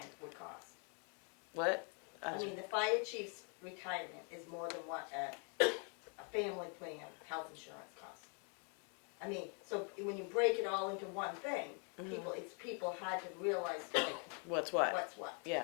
would cost. What? I mean, the fire chief's retirement is more than what a family plan health insurance costs. I mean, so when you break it all into one thing, people had to realize like What's what? what's what.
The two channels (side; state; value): right; quieter; 38.9 dB